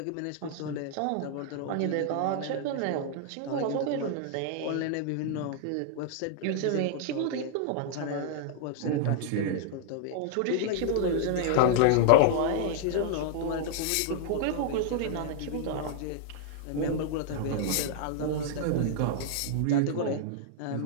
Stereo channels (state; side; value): different; both; correlation -0.01